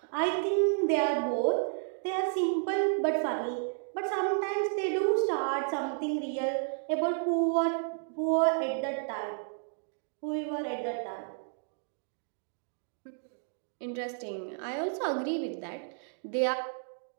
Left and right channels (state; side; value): silent; left; digital silence